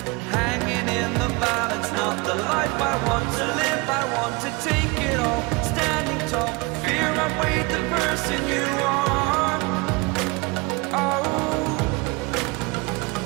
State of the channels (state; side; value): quieter; left; 26.7 dB